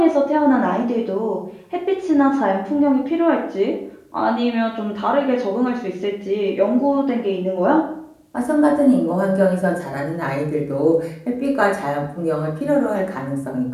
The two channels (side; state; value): both; identical; correlation 1.00